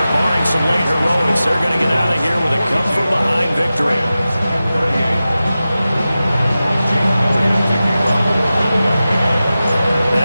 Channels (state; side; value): inverted; both; correlation -0.94